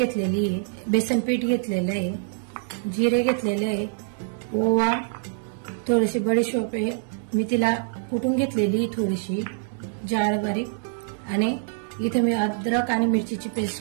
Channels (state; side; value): silent; left; digital silence